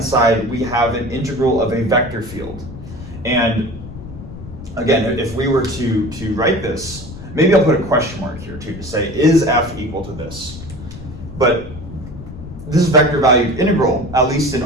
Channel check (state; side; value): noise; left; rumble, 13 dB below the sound